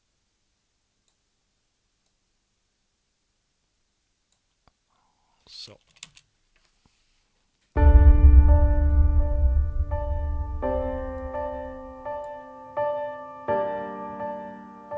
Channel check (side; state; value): both; identical; correlation 1.00